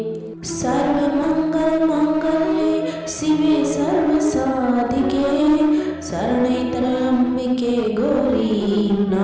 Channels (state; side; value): identical; both; correlation 1.00